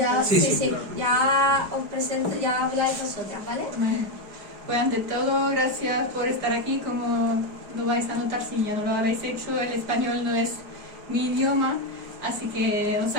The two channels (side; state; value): left; late; 5.0 ms